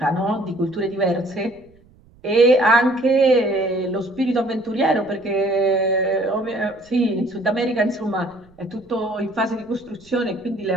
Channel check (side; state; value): right; noise; rumble, 29 dB below the sound